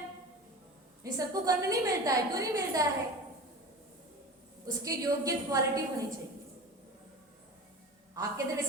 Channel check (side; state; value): both; normal; correlation 0.33